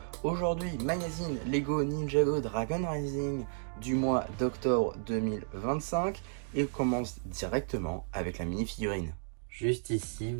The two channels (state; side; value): silent; left; digital silence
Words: Aujourd'hui, magazine Lego Ninjago Dragon Rising du mois d'octobre 2025. Et on commence directement avec la mini-figurine. Juste ici,